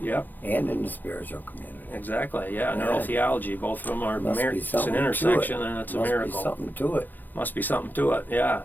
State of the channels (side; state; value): right; late; 0.086 ms